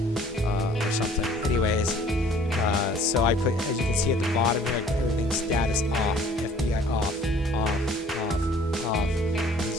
something. Anyways, so I put, as you can see at the bottom here, everything's status off, FBI off, off, off. You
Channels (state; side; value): normal; both; correlation 0.54